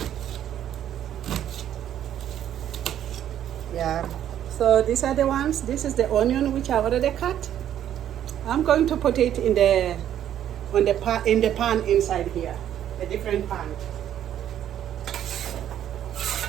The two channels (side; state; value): left; quieter; 10.7 dB